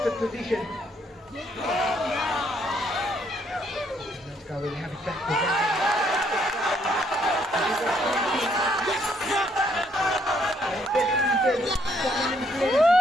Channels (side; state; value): both; normal; correlation 0.69